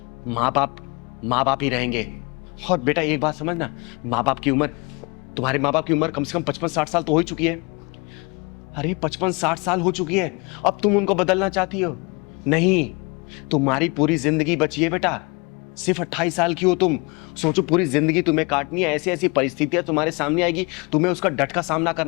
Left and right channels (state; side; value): quieter; right; 29.2 dB